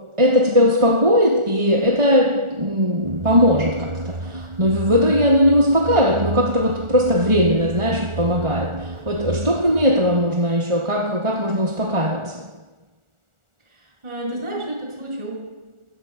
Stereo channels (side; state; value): left; late; 1.4 ms